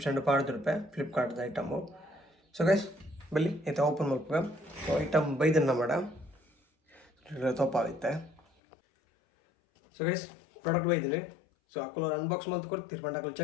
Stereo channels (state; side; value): drops out; right; at 8.4 s